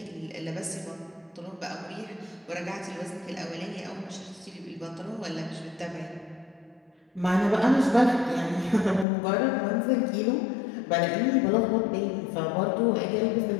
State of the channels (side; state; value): right; drops out; at 9.1 s